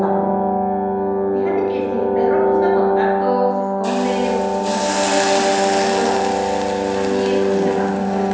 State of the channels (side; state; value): both; identical; correlation 1.00